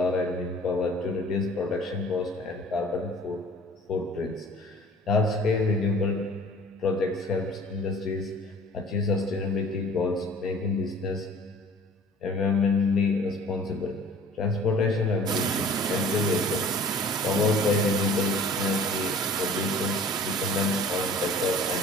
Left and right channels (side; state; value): both; normal; correlation 0.47